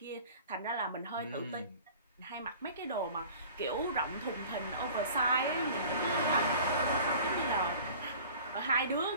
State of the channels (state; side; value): inverted; both; correlation -0.45